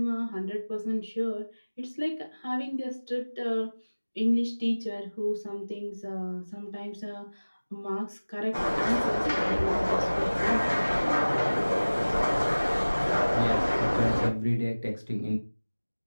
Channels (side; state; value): both; inverted; correlation -1.00